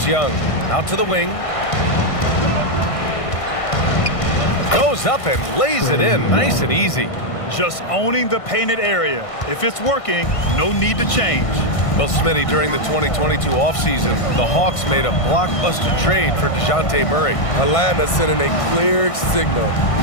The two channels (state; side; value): late; right; 1.5 ms